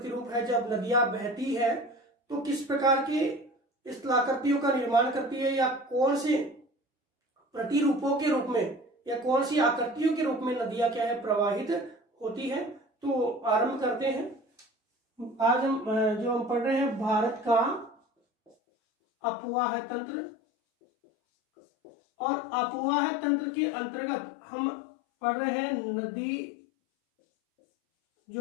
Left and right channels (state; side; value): drops out; right; at 18.6 s